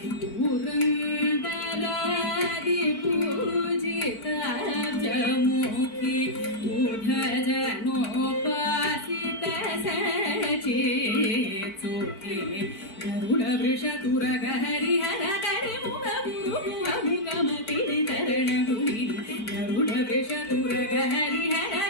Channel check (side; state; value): right; late; 4.5 ms